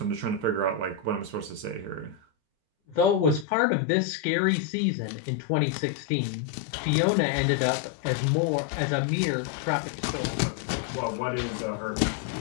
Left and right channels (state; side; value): drops out; right; at 3.5 s